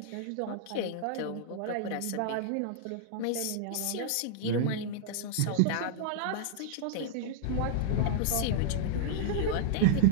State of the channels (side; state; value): both; different; correlation -0.01